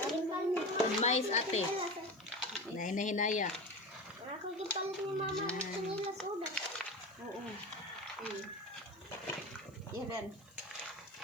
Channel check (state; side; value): noise; right; hiss, 29 dB below the sound